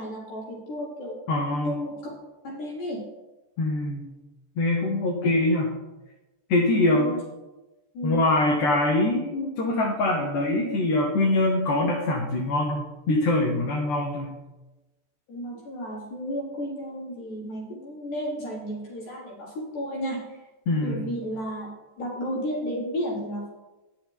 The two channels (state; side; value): late; right; 14 ms